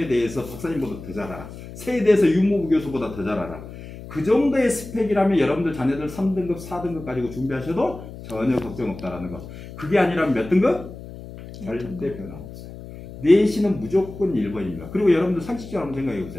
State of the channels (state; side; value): noise; left; hum, 14 dB below the sound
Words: 대해서 박사님보다 더 잘 알아. 새에 대해서 유무부 교수보다 더 잘 알아. 그 정도의 스펙이라면 여러분들 자녀들 3등급 4등급 가지고 준비하셔도 전혀 걱정 없다라는 거. 그게 아니라면 몇 등급? 절대 변함없어요. 내신은 무조건 1번입니다. 그리고 여러분들 상식적으로 한번 생각해